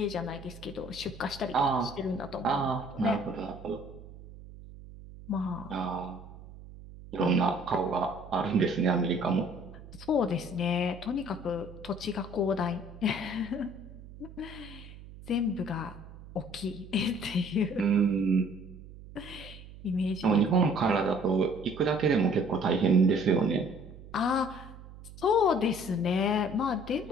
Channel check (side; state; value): right; noise; hum, 16 dB below the sound